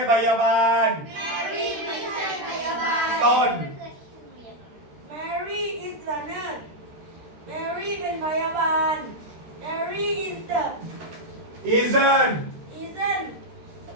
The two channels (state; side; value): late; left; 13 ms